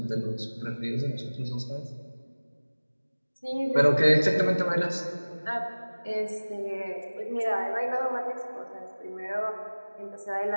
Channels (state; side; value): inverted; both; correlation -1.00